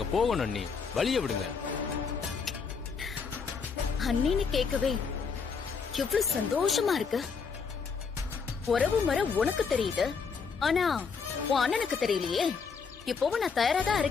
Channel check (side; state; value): right; quieter; 5.6 dB